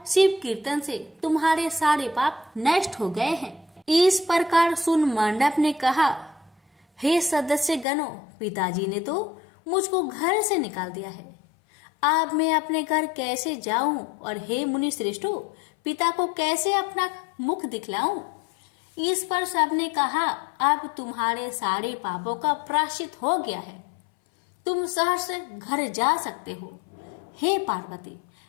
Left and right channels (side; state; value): right; drops out; at 7.9 s